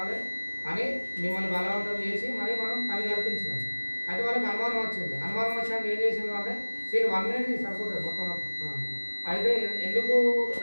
అని మిమ్మల్ని బలవంతం చేసి మరి మనం పని కల్పించినాం. అయితే వాళ్ళకి అనుమానం వచ్చింది. అనుమానం వచ్చాక ఏం చేసింది అంటే 1 మినిట్ సరిపోతుంది మొత్తం. అయితే ఎందుకు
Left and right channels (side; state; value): both; inverted; correlation -1.00